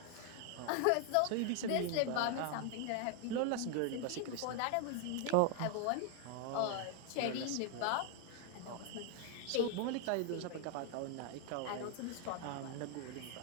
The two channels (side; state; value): both; different; correlation 0.00